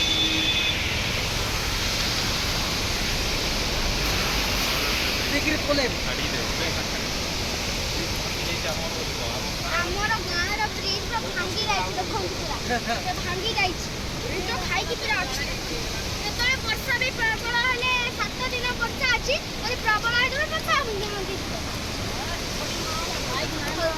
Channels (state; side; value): identical; both; correlation 1.00